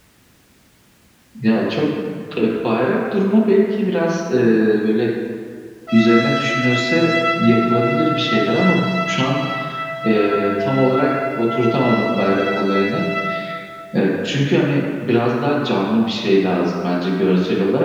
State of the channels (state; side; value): identical; both; correlation 1.00